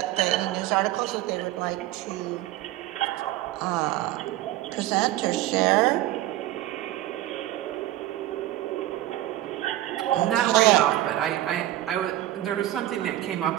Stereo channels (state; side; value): quieter; left; 14.7 dB